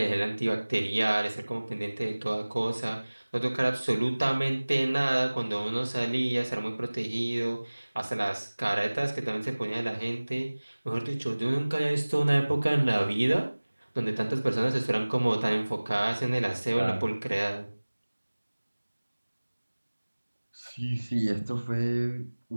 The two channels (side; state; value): both; inverted; correlation -1.00